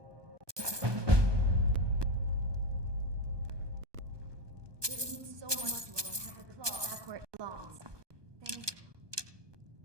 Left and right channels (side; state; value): left; late; 1.2 ms